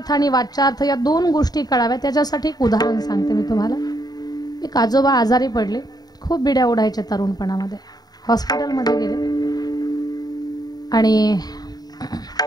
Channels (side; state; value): right; late; 0.19 ms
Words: आणि वाचार्थ या दोन गोष्टी कळाव्या त्याच्यासाठी एक उदाहरण सांगते मी तुम्हाला. एक आजोबा आजारी पडले, खूप बिड्या ओढायच्या तरुणपणामध्ये, हॉस्पिटलमध्ये गेले आणि